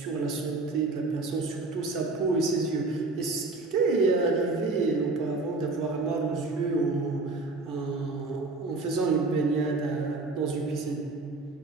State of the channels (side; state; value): left; quieter; 3.4 dB